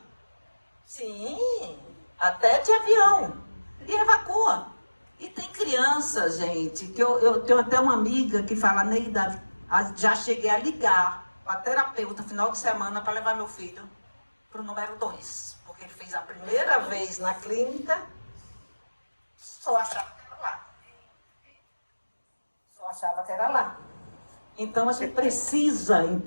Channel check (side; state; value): both; inverted; correlation -1.00